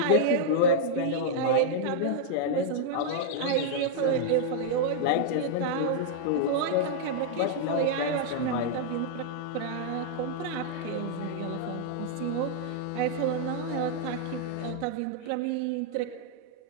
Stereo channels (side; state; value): both; different; correlation -0.01